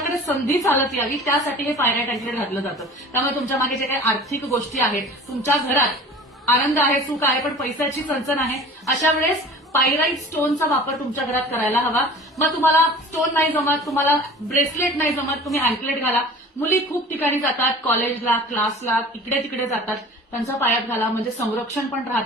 संधी चालत यावी, त्यासाठी हे पायराइट अँकलेट घातलं जातं. त्यामुळे तुमच्या मागे जे काही आर्थिक गोष्टी आहेत, तुमच्या घरात आनंद आहे, सुख आहे, पण पैशाची चणचण आहे, अशा वेळेस पायराइट स्टोनचा वापर तुमच्या घरात करायला हवा. मग तुम्हाला स्टोन नाही जमत, तुम्हाला ब्रेसलेट नाही जमत, तुम्ही अँकलेट घाला. मुली खूप ठिकाणी जातात, कॉलेजला, क्लासला, इकडे तिकडे जातात, त्यांच्या पायात घाला, म्हणजे संरक्षण पण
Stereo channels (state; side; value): normal; both; correlation 0.42